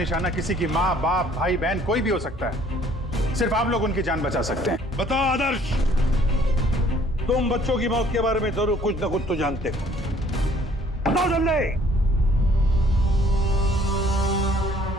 किसी की माँ, बाप, भाई, बहन कोई भी हो सकता है। सिर्फ आप लोग उनकी जान बचा सकते हैं। बताओ आदर्श, तुम बच्चों की मौत के बारे में जरूर कुछ न कुछ तो जानते हो। बताओ जल्दी।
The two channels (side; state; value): both; normal; correlation 0.58